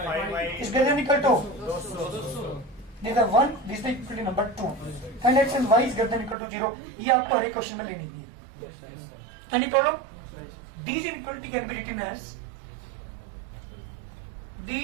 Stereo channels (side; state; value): left; drops out; at 6.4 s